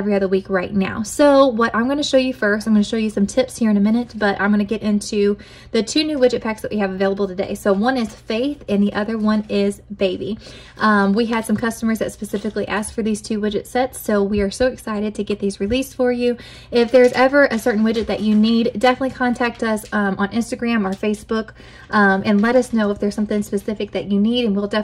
other week right now. So what I'm going to show you first, I'm going to show you some tips here in a minute, but I'm going to get into the 2 new widget packs that we have available today. So one is Faith and the other one is Baby. We had some customers that specifically asked for these 2 widget sets, so we are so excited to get these released for you. If there's ever a certain widget that you need, definitely contact us on Instagram or Facebook and let us know if there's something specific that you need, and we'll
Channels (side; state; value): both; identical; correlation 1.00